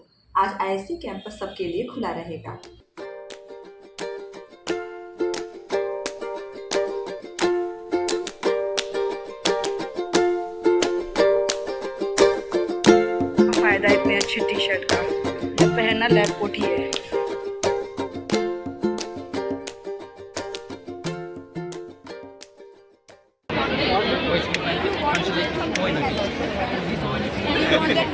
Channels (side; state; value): both; identical; correlation 1.00